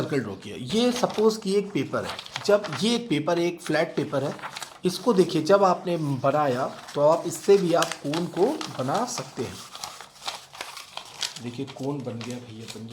ड्रॉ किया, ये सपोज कि एक पेपर है, जब ये एक पेपर एक फ्लैट पेपर है, इसको देखिए जब आपने बनाया तो आप इससे भी आप कोन को बना सकते हैं। देखिए कोन बन गया भैया, बन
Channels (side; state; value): both; identical; correlation 1.00